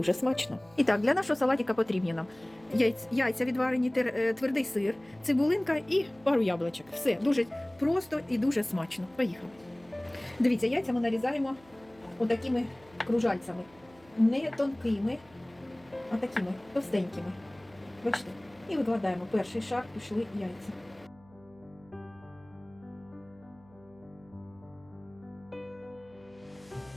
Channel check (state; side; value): noise; right; hum, 27 dB below the sound